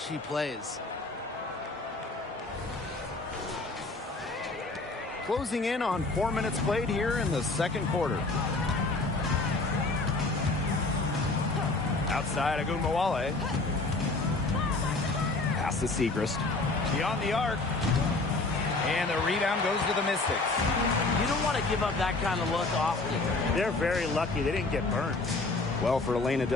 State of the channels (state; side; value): quieter; right; 3.3 dB